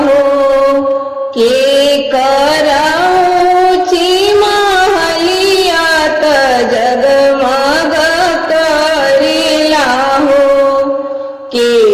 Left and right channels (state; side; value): identical; both; correlation 1.00